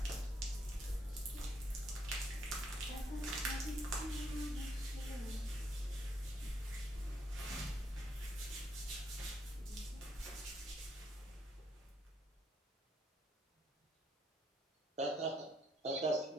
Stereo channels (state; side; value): normal; both; correlation 0.73